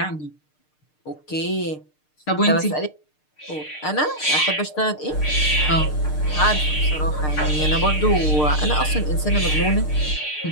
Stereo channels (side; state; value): right; late; 6.6 ms